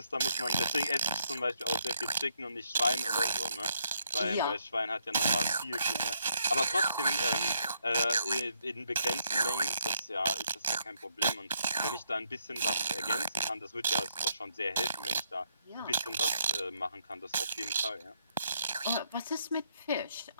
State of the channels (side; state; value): both; inverted; correlation -0.76